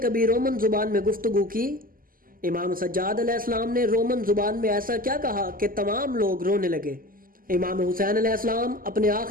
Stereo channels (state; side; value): late; left; 0.41 ms